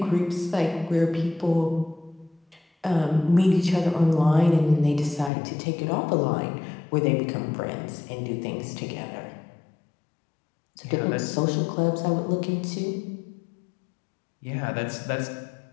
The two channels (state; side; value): drops out; right; at 5.3 s